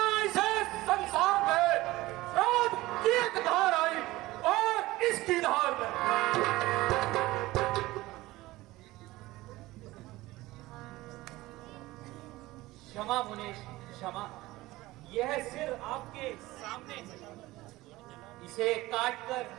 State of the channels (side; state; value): left; quieter; 18.6 dB